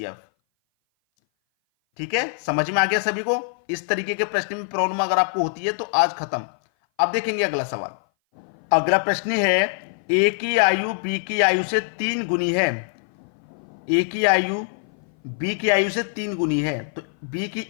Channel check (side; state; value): right; silent; 58 dB below the other